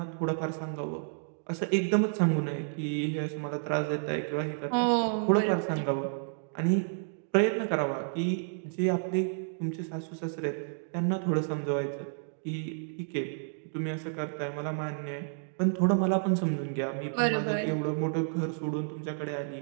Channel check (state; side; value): silent; left; digital silence